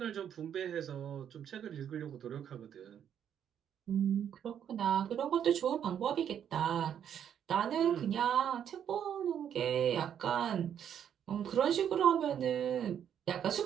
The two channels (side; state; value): left; quieter; 9.1 dB